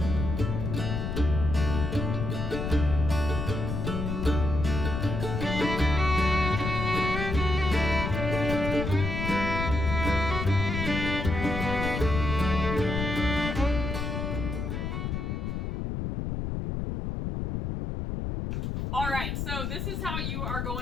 All right, so this is how you are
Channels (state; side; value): noise; left; rumble, 3 dB below the sound